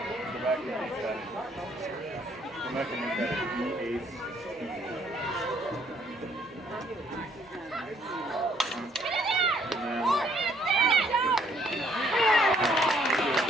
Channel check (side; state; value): both; normal; correlation 0.66